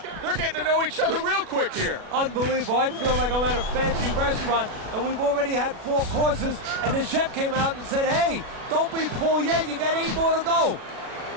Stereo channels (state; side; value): late; left; 36 ms